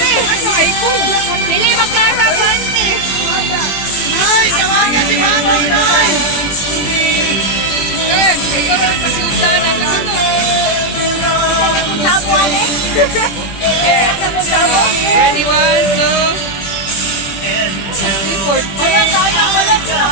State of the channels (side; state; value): right; late; 21 ms